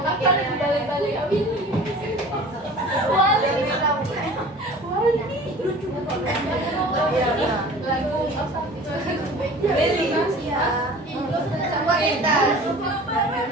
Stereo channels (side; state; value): both; normal; correlation 0.43